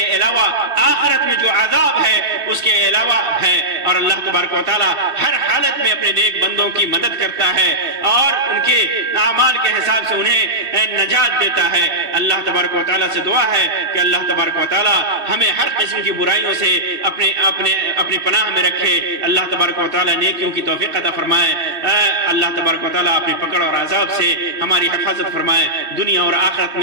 علاوہ آخرت میں جو عذاب ہے اس کے علاوہ ہے۔ اور اللہ تبارک و تعالیٰ ہر حالت میں اپنے نیک بندوں کی مدد کرتا ہے اور ان کے اعمال کے حساب سے انہیں نجات دیتا ہے۔ اللہ تبارک و تعالیٰ سے دعا ہے کہ اللہ تبارک و تعالیٰ ہمیں ہر قسم کی برائیوں سے اپنی پناہ میں رکھے، اللہ تبارک و تعالیٰ نیکیوں کی توفیق عطا فرمائے، اللہ تبارک و تعالیٰ اپنی پکڑ اور عذاب سے ہماری حفاظت فرمائے، دنیا اور آخرت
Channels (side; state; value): left; late; 2.6 ms